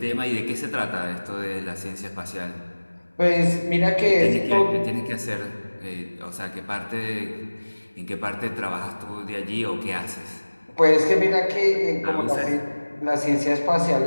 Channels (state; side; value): inverted; both; correlation -1.00